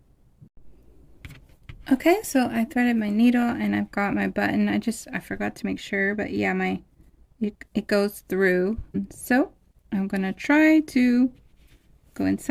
Okay, so I threaded my needle and I've got my button. I forgot to make sure, but yeah, it goes through. So I'm going to try to go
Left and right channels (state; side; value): identical; both; correlation 1.00